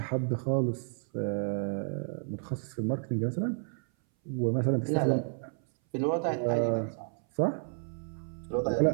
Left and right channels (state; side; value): silent; left; 57 dB below the other